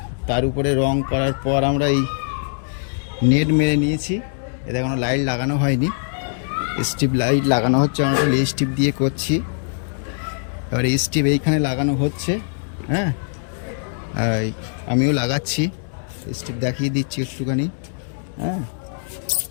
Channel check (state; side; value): silent; right; digital silence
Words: তার উপরে রং করার পর আমরা এই নেট মেরে নিয়েছি। এতে কোনো লাইট লাগানো হয়নি, স্ট্রিপ লাইট লাগানো হচ্ছে। আমরা এই স্ট্রিপ দিয়ে করছি। এবার এই স্ট্রিপ এইখানে লাগানো হচ্ছে। হ্যাঁ, আমিও লাগাচ্ছি, স্ট্রিপ দেখিয়ে দিচ্ছি একটুখানি। হ্যাঁ,